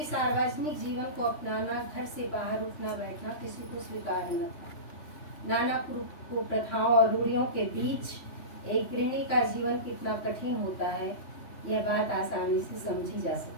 सार्वजनिक जीवन को अपनाना, घर से बाहर उठना बैठना किसी को स्वीकार न था। नाना कुप्रथाओं और रूढ़ियों के बीच एक गृहिणी का जीवन कितना कठिन होता है, यह बात आसानी से समझी जा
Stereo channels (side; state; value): right; late; 3.1 ms